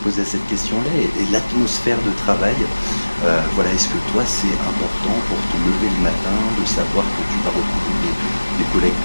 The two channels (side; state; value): both; inverted; correlation -1.00